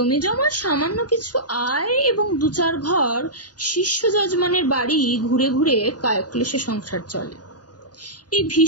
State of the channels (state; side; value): late; right; 0.69 ms